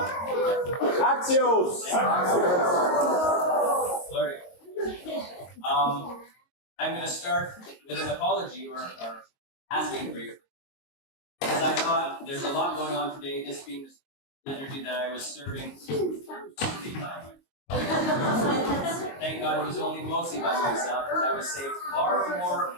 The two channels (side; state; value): right; late; 22 ms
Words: Axios! Glory. I'm going to start with an apology or asking for your, because I thought there's a lot going on today, this being the liturgy that I was serving. Thank God it was only mostly by myself, because I was saved far more